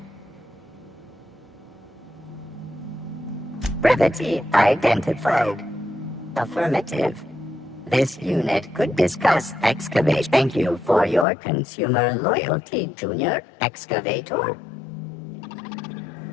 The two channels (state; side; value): drops out; right; at 11.2 s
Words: brevity identified. Affirmative. This unit could discuss excavation. Thank you for your consumer loyalty, Junior Excavator.